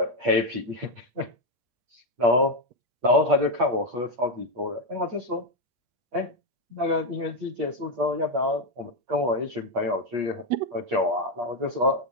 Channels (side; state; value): left; late; 8.5 ms